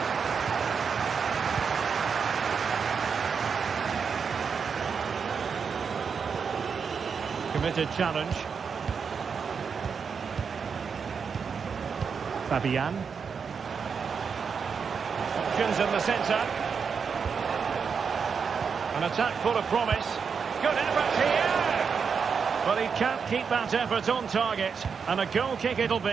Committed challenge. Fabian. Options in the centre. An attack full of promise. Good effort here. But he can't keep that effort on target. And a goal kick it'll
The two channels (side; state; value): left; quieter; 6.1 dB